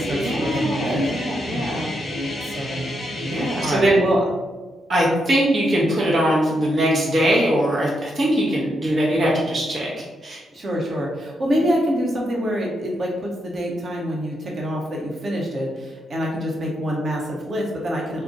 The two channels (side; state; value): both; normal; correlation 0.82